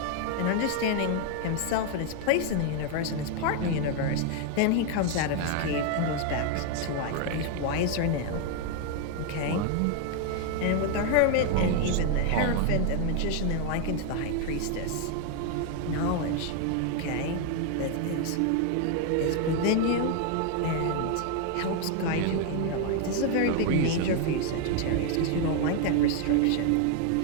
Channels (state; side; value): different; both; correlation 0.01